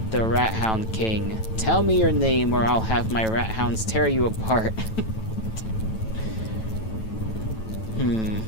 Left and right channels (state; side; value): late; right; 9.1 ms